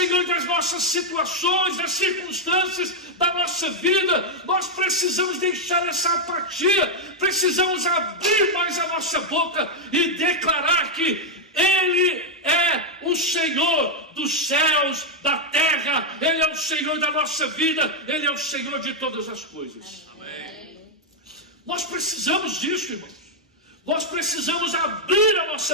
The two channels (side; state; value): both; normal; correlation -0.02